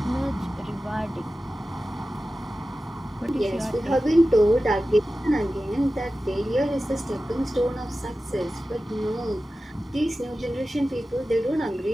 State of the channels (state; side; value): normal; both; correlation 0.94